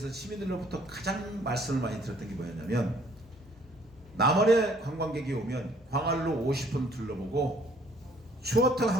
시민들로부터 가장 말씀을 많이 들었던 게 뭐였냐면 남원에 관광객이 오면 광안로 50분 둘러보고 추어탕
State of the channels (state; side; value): normal; both; correlation 0.60